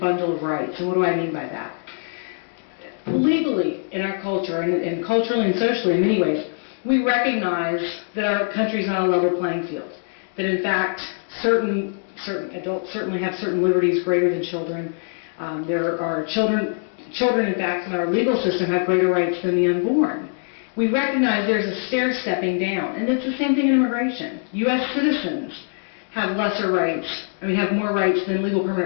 of rights. And what do I mean by that? Legally, in our culture, and culturally and socially in many ways, we recognize that our country is not a level playing field. That in fact, certain adults certainly have certain liberties greater than children. There are children in fact in our legal system have greater rights than the unborn. We recognize there's a stair-stepping down, and it's the same thing in immigration. U.S. citizens have lesser rights, have more rights than legal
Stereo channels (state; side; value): silent; right; 64 dB below the other